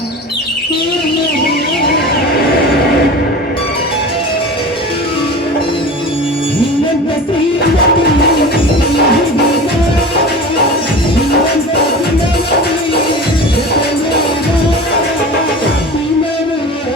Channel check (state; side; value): normal; both; correlation 0.34